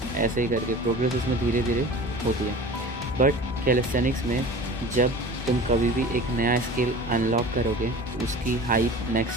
ऐसे ही करके प्रोग्रेस उसमें धीरे धीरे होती है। बट कैलिस्थेनिक्स में जब तुम कभी भी एक नया स्किल अनलॉक करोगे तो उसकी हाइप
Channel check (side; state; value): both; normal; correlation 0.39